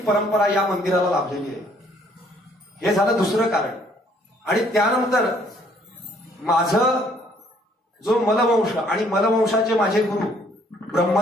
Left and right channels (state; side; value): normal; both; correlation 0.63